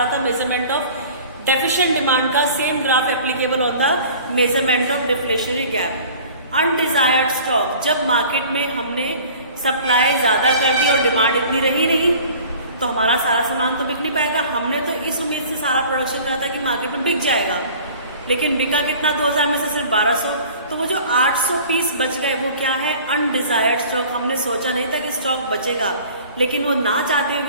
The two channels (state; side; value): inverted; both; correlation -0.46